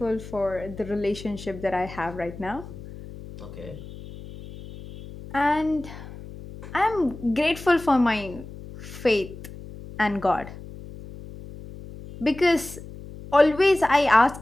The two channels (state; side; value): noise; left; hum, 14 dB below the sound